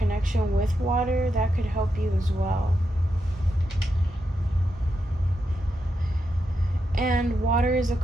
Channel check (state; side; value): normal; both; correlation 0.85